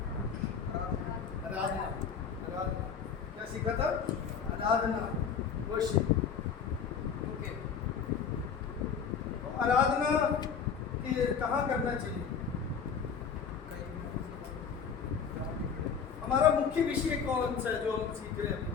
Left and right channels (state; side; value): quieter; right; 6.6 dB